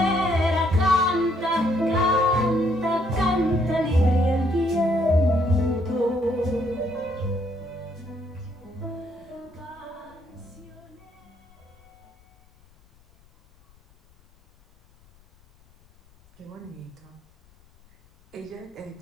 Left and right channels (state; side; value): noise; left; rumble, 30 dB below the sound